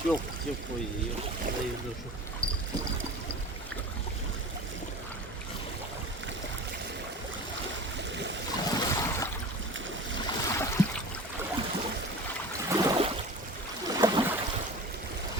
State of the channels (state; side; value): normal; both; correlation 0.36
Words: Yok, yok koyuyor. Hayırlı olsun.